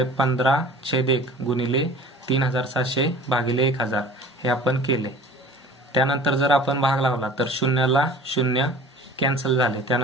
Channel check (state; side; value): normal; both; correlation 0.44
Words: 15/1 गुणिले 3700 भागिले 1000 हे आपण केले। त्यानंतर जर आपण भाग लावला तर 0ला 0 कॅन्सल झाले,